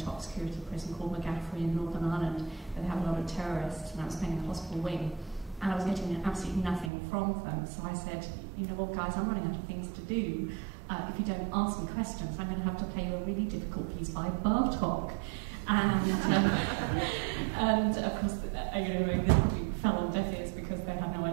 security prison called McGaffrey in Northern Ireland, where they have a lot of terrorists, and I was playing in a hospital wing, and I was getting absolutely nothing from them. So I said, guys, I'm running out of things to do. if you don't ask me questions, I'm going to have to play you a really difficult piece by Bartók. And of course, this probably fell on deaf ears because they had no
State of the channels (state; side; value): drops out; left; at 6.9 s